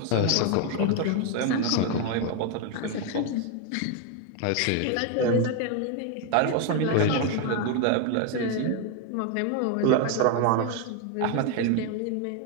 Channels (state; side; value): different; both; correlation 0.01